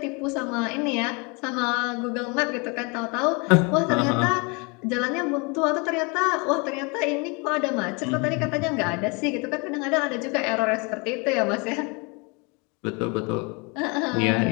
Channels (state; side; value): quieter; right; 30.4 dB